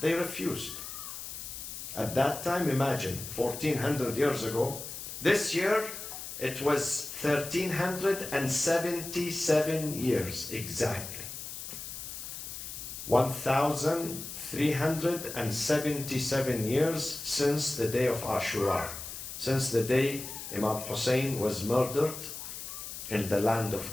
refused. At that time, imagine, 1400 years ago, this year it was 1377 years exactly. 1377 years since the day of Ashura, since the day Imam Hussein was murdered in the land of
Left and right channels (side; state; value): left; noise; hiss, 9 dB below the sound